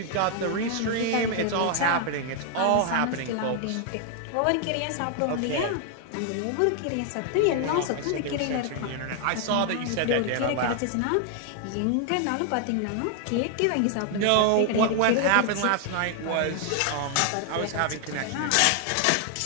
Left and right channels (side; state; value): both; different; correlation 0.00